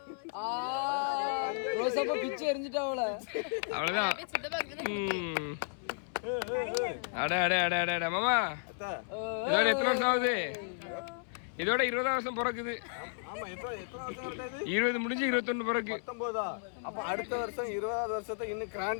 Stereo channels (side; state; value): right; silent; 55 dB below the other